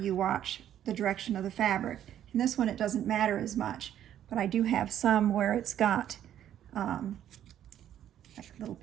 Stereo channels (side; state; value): left; quieter; 10.9 dB